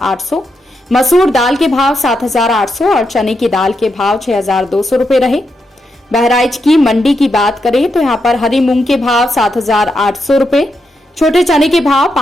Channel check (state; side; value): normal; both; correlation 0.83